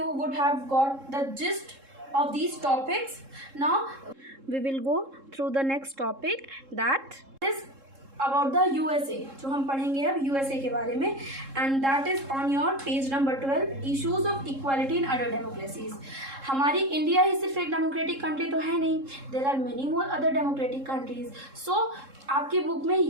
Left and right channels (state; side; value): late; left; 3.7 ms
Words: would have got the gist of these topics. Now we will go through the next topic, that is about the USA. जो हम पढ़ेंगे अब USA के बारे में, and that is on your page number 12, issues of equality in other democracies. हमारी India ही सिर्फ एक डेमोक्रेटिक कंट्री तो है नहीं, there are many more other democratic countries. So आपकी बुक में